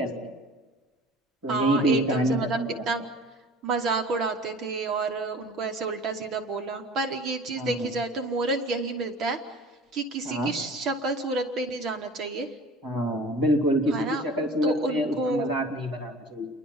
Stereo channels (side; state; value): both; normal; correlation 0.43